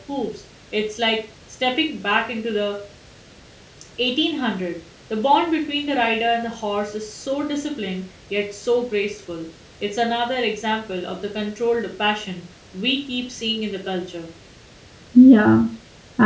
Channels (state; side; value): identical; both; correlation 1.00